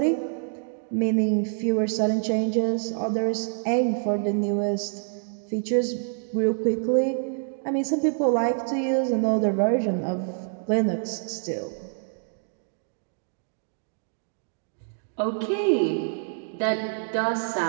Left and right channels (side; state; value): left; silent; digital silence